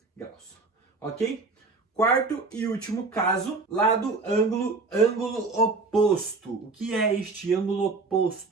graus. Ok? Quarto e último caso, lado, ângulo, ângulo oposto. O que é este ângulo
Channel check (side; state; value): left; quieter; 3.9 dB